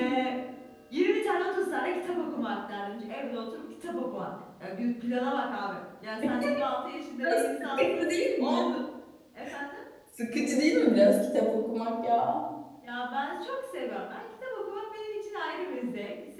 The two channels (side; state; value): both; identical; correlation 1.00